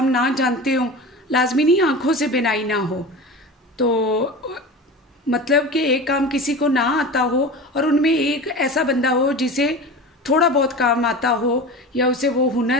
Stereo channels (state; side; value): normal; both; correlation 0.31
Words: ना जानते हों, लाजमी नहीं आंखों से बिनाई ना हो, तो मतलब कि एक काम किसी को ना आता हो और उनमें एक ऐसा बंदा हो जिसे थोड़ा बहुत काम आता हो या उसे वो